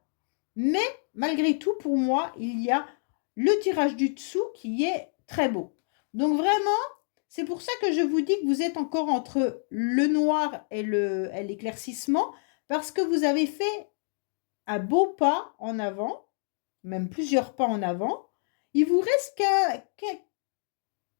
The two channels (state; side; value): silent; right; digital silence